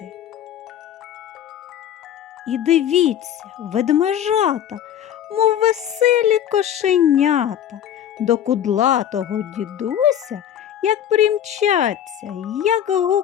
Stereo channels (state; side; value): quieter; right; 10.2 dB